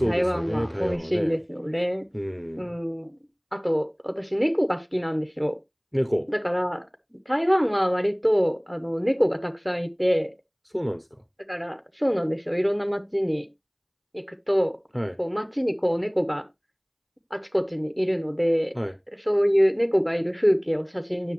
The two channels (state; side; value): identical; both; correlation 1.00